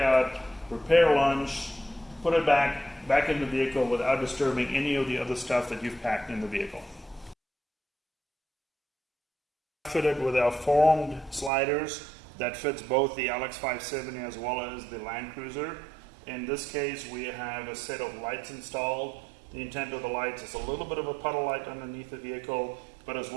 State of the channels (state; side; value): drops out; left; at 11.5 s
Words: prepare lunch, put it back in the vehicle without disturbing any of the other stuff that you've packed in the vehicle. Fitted with our formed sliders that fits both the LX570 as well as the Land Cruiser. In this case, we have a set of lights installed. The intent of the lights is a little bit of a puddle light underneath the vehicle, but as